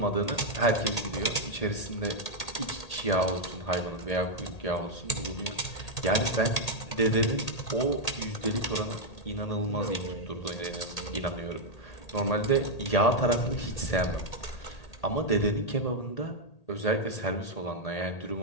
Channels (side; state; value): right; late; 1.8 ms